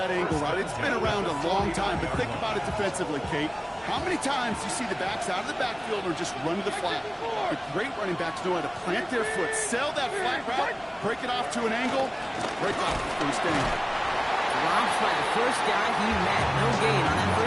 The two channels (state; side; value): identical; both; correlation 1.00